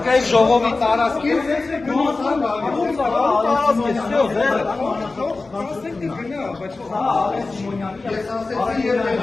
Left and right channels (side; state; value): right; quieter; 3.6 dB